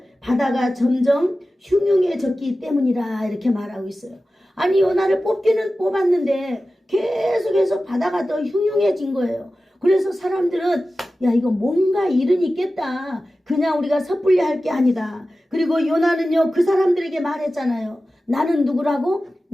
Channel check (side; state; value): both; normal; correlation 0.95